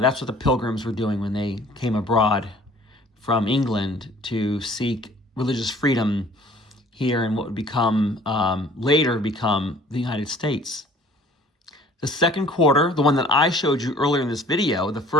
what the pilgrims were doing when they came abroad from England to seek religious freedom here in what would become, later become the United States. The second quarter, the one that I showed you earlier in this video, the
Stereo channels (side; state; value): both; normal; correlation 0.52